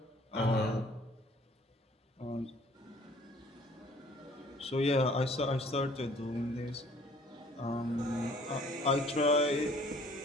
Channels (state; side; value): normal; both; correlation 0.55